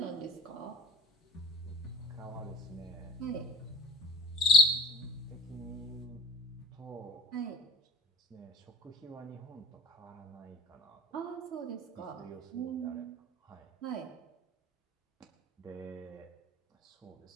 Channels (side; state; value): both; normal; correlation 0.40